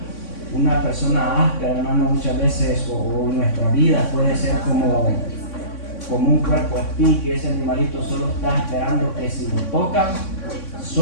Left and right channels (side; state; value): right; late; 3.6 ms